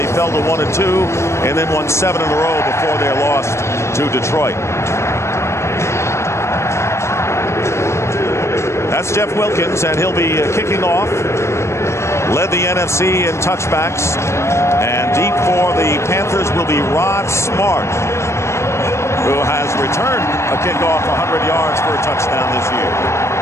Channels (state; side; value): late; right; 0.13 ms